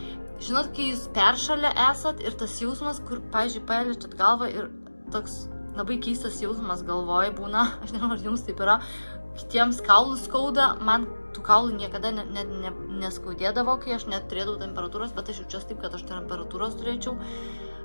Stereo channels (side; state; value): both; inverted; correlation -1.00